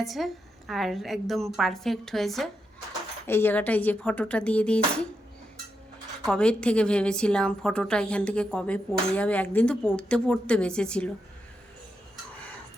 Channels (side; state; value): both; normal; correlation 0.84